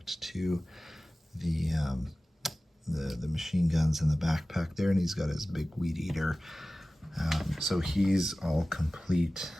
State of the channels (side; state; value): both; normal; correlation 0.97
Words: to the machine guns in the backpack there, and he's got his big weed eater. So he's all complete